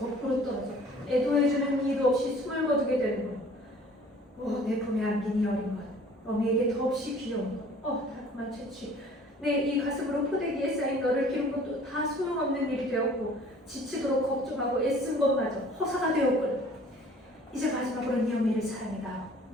떨어져 애도해주는 이도 없이 숨을 거두게 되는군. 내 품에 안긴 이 어린 것, 어미에게 더없이 귀여운 것, 달콤한 채취. 내 이 가슴으로 포대기에 쌓인 너를 기른 것도 다 소용없는 일이 되었고 지치도록 걱정하고 애쓴 것마저 허사가 되었군. 이제 마지막으로 네 어미를 사랑해다.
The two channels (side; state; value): both; normal; correlation 0.51